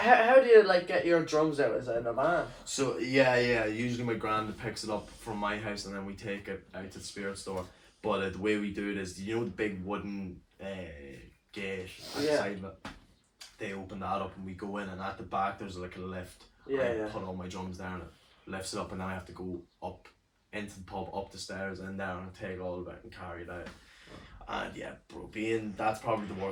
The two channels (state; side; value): identical; both; correlation 1.00